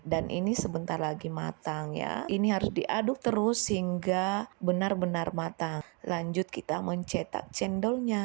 dan ini sebentar lagi matang ya. Ini harus diaduk terus hingga benar-benar matang. Lanjut kita mencetak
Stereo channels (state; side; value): quieter; left; 33.6 dB